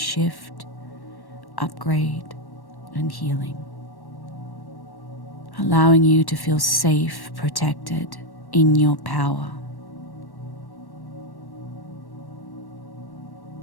upgrade, and healing. Allowing you to feel safe, protected in your power.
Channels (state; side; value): late; right; 1.1 ms